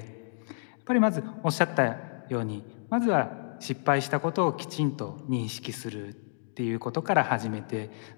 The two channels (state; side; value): silent; right; digital silence